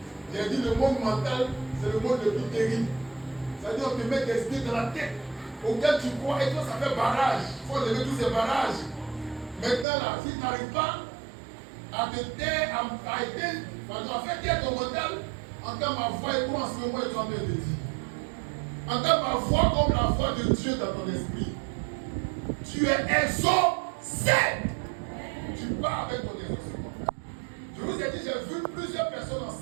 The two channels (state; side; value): drops out; left; at 9.9 s